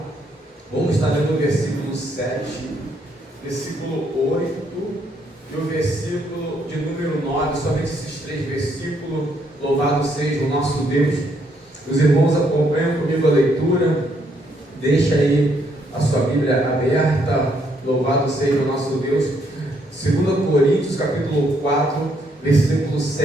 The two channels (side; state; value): both; normal; correlation 0.72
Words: vamos estar lendo o versículo 7, versículo 8 e o versículo de número 9, somente esses 3 versículos. Louvado seja o nosso Deus. Os irmãos acompanham comigo a leitura, deixa aí a sua Bíblia aberta, louvado seja o nosso Deus. 2 Coríntios, capítulo 4, versículo